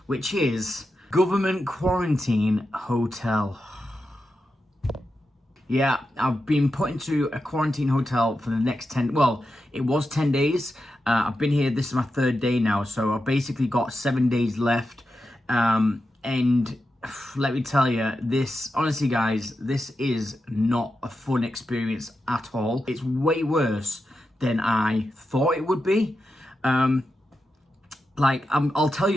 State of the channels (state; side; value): normal; both; correlation 0.89